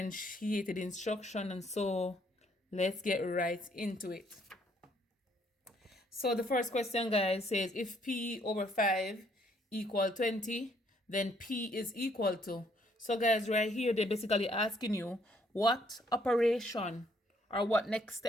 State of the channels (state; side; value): normal; both; correlation 0.67